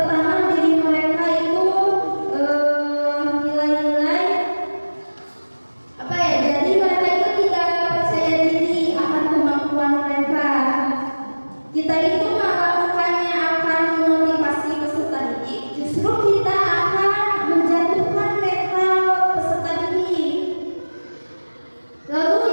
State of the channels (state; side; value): inverted; both; correlation -1.00